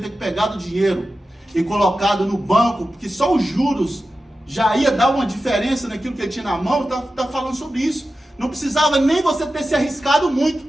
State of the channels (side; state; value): both; normal; correlation 0.93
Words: pegado o dinheiro e colocado no banco, porque só os juros já ia dar uma diferença naquilo que ele tinha na mão, está falando sobre isso. Não precisava nem você ter se arriscado muito.